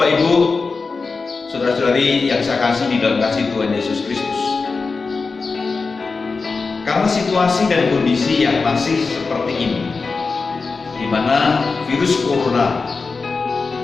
Ibu, saudara-saudari yang saya kasih di dalam kasih Tuhan Yesus Kristus, karena situasi dan kondisi yang masih seperti ini, di mana virus corona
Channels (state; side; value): quieter; right; 4.4 dB